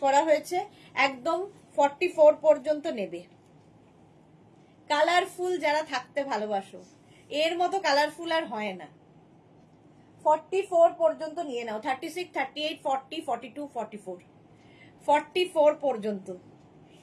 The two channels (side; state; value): both; identical; correlation 1.00